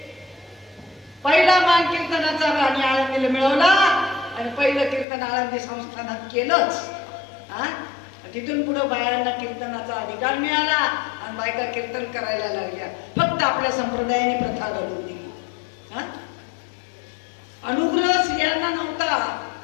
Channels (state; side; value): drops out; right; at 5.1 s